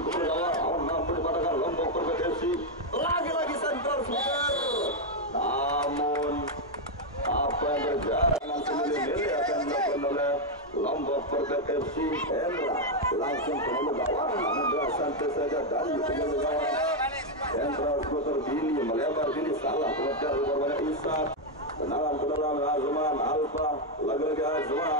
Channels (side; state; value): both; normal; correlation 0.01